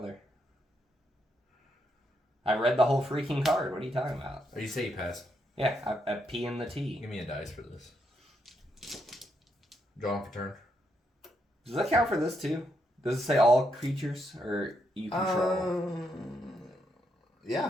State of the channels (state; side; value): normal; both; correlation 0.78